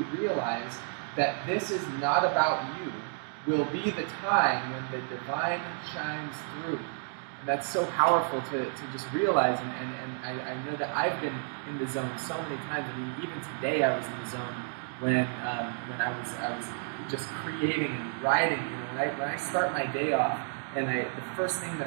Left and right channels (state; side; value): silent; left; 57 dB below the other